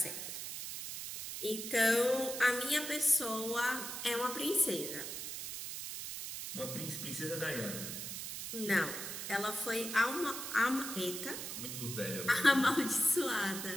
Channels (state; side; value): noise; right; hiss, 6 dB below the sound